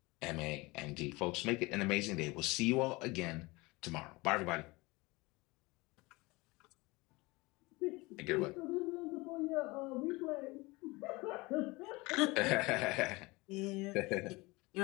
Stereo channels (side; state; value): right; quieter; 23.4 dB